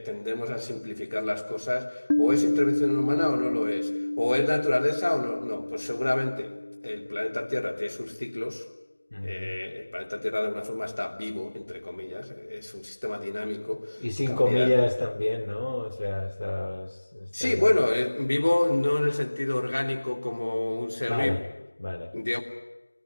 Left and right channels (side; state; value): both; inverted; correlation -1.00